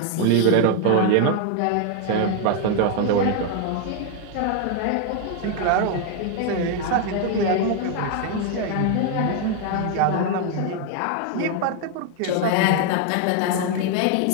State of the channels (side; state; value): both; different; correlation 0.00